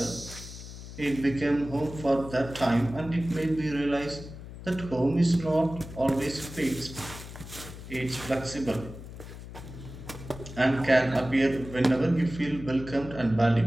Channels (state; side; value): noise; left; hum, 13 dB below the sound